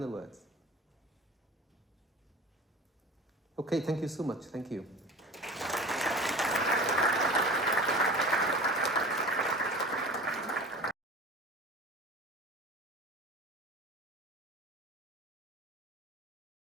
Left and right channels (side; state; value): both; normal; correlation 0.37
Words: words? Okay, thank you so much. Thank you.